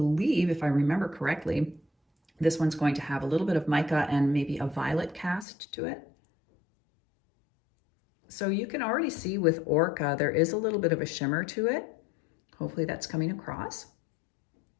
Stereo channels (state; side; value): drops out; right; at 5.5 s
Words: if I remember correctly, This one's going to have a little bit of mica and maybe a violet cast to it. So you can already see with ORCA, there is a little bit of a shimmer to it. Hopefully that's coming across.